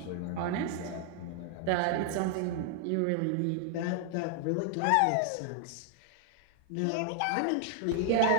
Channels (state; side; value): different; both; correlation 0.00